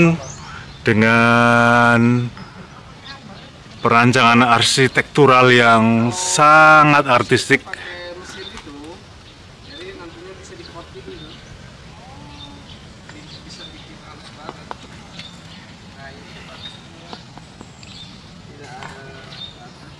dengan perancangan arsitektural yang sangat artistik.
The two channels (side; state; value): both; identical; correlation 1.00